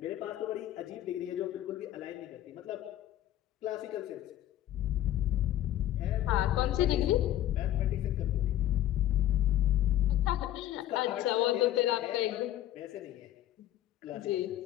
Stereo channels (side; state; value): right; quieter; 13.0 dB